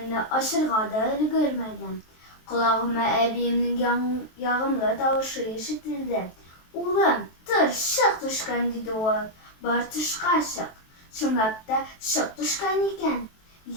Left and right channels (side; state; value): right; late; 23 ms